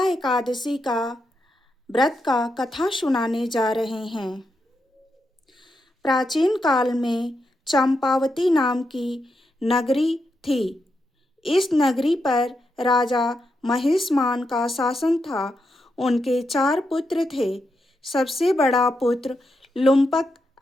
एकादशी का व्रत का कथा सुनाने जा रहे हैं। प्राचीन काल में चंपावती नाम की नगरी थी। इस नगरी पर राजा महिष्मान का शासन था। उनके 4 पुत्र थे। सबसे बड़ा पुत्र लुम्पक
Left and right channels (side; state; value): both; normal; correlation 0.84